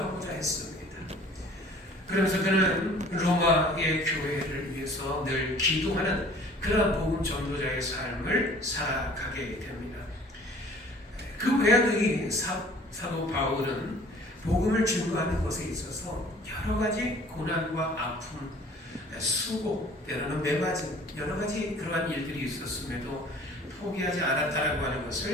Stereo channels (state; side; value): normal; both; correlation 0.50